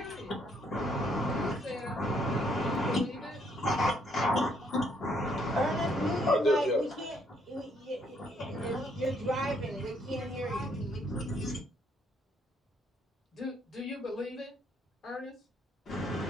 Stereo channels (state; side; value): normal; both; correlation 0.69